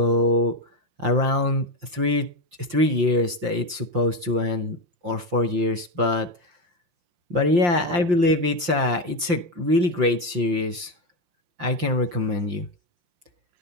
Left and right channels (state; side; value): late; left; 5.7 ms